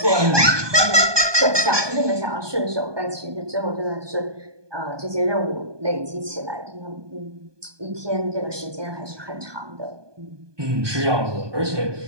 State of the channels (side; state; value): left; late; 1.2 ms